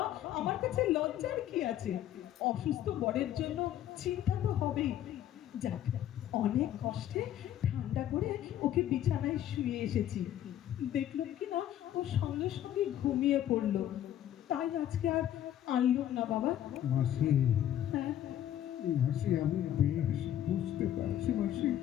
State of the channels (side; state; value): right; quieter; 11.5 dB